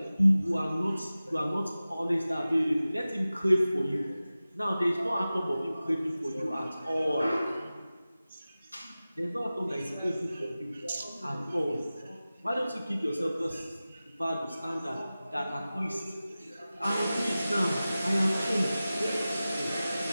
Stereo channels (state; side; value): inverted; both; correlation -0.96